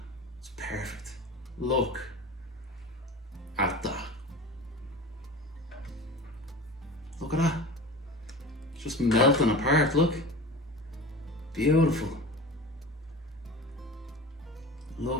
It's perfect. Look at that. Look at that. It's just melting apart, look. Beautiful.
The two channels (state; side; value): normal; both; correlation 0.35